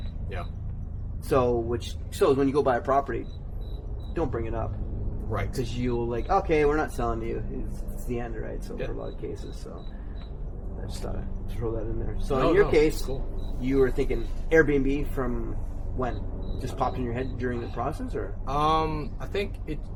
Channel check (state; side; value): identical; both; correlation 1.00